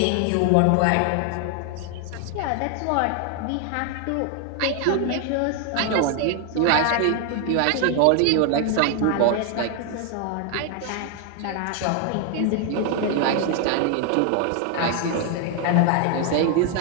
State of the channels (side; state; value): both; different; correlation 0.00